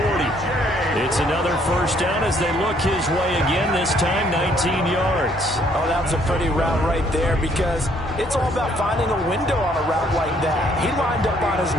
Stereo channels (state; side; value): normal; both; correlation 0.65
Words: It's another 1st down as they look his way again, this time 19 yards. Oh, that was a pretty route right there because it's all about finding a window on a route like that. He lined up on his